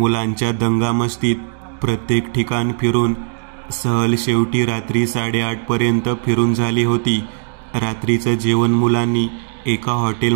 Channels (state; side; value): silent; left; 67 dB below the other